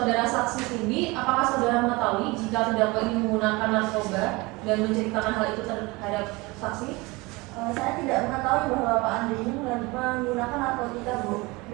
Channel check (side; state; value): left; quieter; 23.8 dB